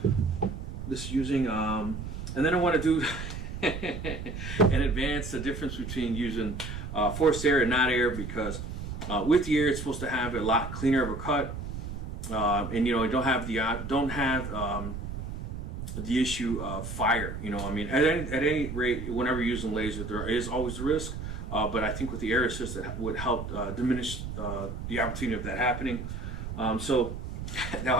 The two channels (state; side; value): noise; right; rumble, 7 dB below the sound